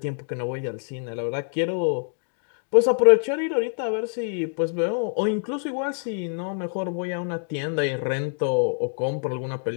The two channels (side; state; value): right; silent; digital silence